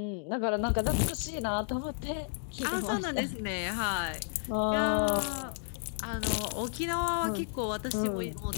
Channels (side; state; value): right; silent; digital silence